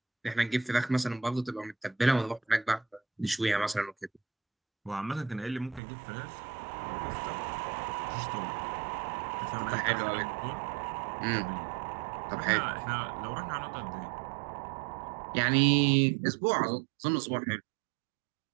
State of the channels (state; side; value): drops out; left; at 5.8 s